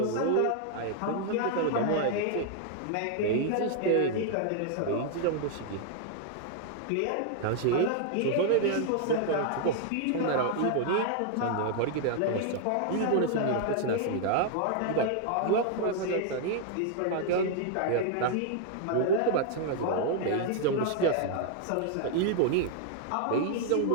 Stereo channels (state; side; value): different; both; correlation 0.00